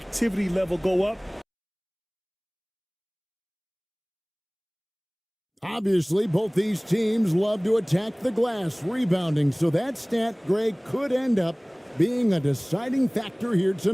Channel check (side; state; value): both; identical; correlation 1.00